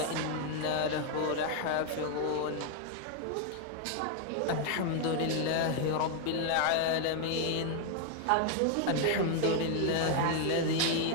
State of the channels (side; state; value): both; different; correlation 0.00